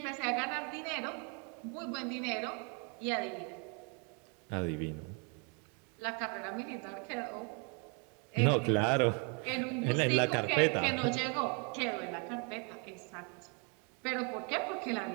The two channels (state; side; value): quieter; left; 35.9 dB